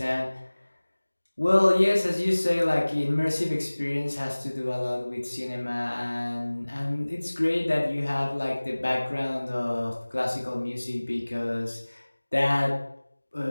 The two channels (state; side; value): inverted; both; correlation -1.00